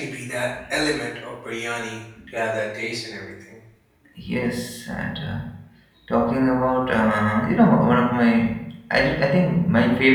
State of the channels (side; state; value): both; identical; correlation 1.00